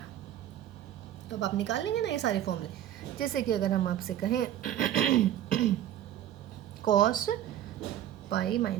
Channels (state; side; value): quieter; left; 11.7 dB